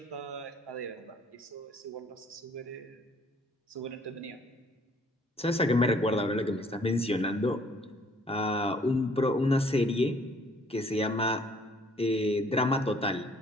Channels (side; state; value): both; normal; correlation 0.60